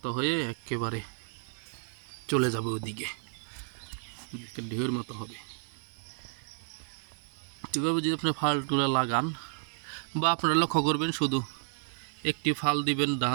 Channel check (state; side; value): silent; left; digital silence